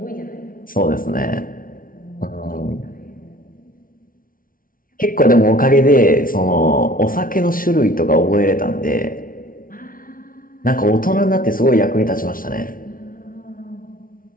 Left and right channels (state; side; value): late; right; 0.41 ms